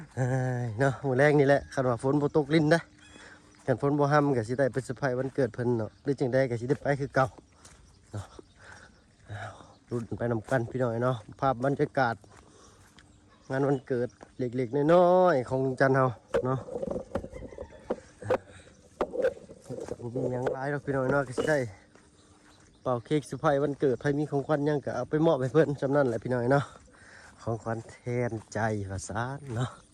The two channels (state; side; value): identical; both; correlation 1.00